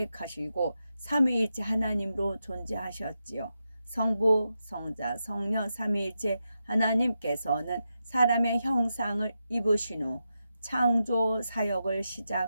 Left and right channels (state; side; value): inverted; both; correlation -0.88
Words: 삼위일체 하나님으로 존재하셨지요. 성부, 성자, 성령 삼위일체 하나님께서는 사람의 형상을 입으신 후 창조 사역을